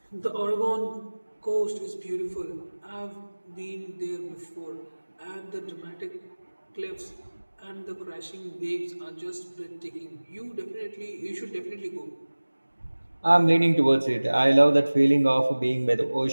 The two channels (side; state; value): both; inverted; correlation -1.00